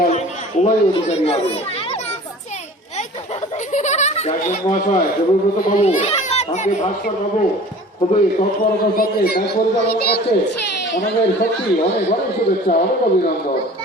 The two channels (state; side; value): normal; both; correlation 0.44